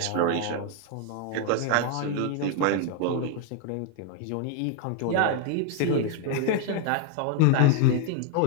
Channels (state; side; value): different; both; correlation 0.00